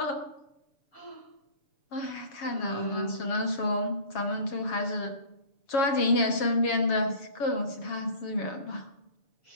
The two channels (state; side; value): late; right; 7.2 ms